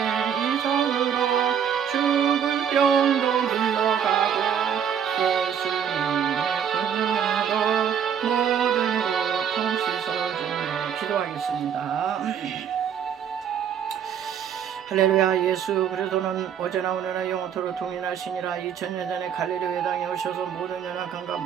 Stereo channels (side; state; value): left; quieter; 8.3 dB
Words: 이정으로 죽을 병도 물러가고 예수님의 권능으로 모든 고통 씻어주며 기도하겠습니다. 할렐루야. 예수 그리스도는 어제나 오늘나 영원토록 동일하시니라. 2000년 전에 갈릴리 땅에 오셔서 모든 연약함과